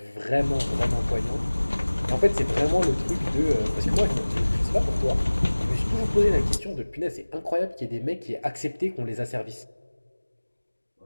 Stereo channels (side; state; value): both; inverted; correlation -1.00